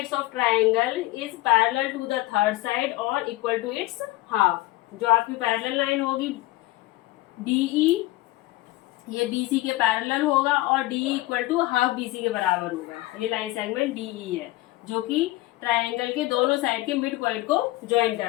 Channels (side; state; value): right; quieter; 18.5 dB